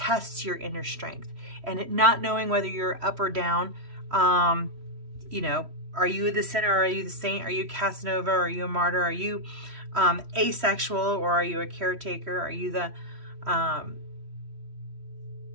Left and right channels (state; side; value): late; left; 3.1 ms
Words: your inner strength, and it not knowing whether you're up or down. You know, are you the sinner? Are you the saint? Are you Casanova? Are you a martyr? Are you asexual, or are you a caretaker? Are you the